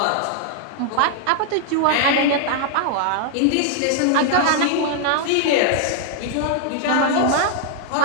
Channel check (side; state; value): both; different; correlation 0.00